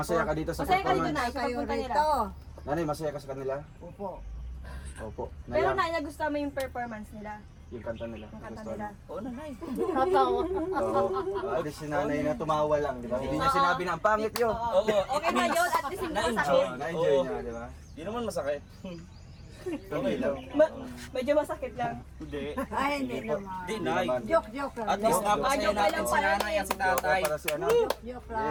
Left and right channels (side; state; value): both; identical; correlation 1.00